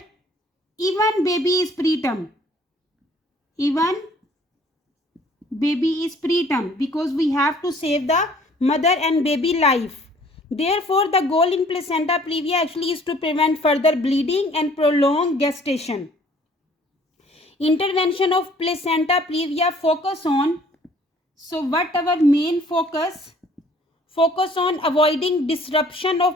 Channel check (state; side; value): normal; both; correlation 0.56